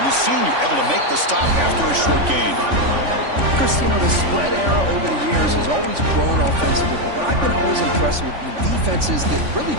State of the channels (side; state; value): left; late; 3.5 ms